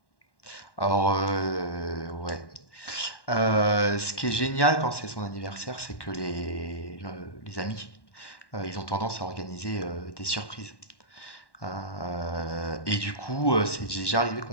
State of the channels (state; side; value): late; right; 1.1 ms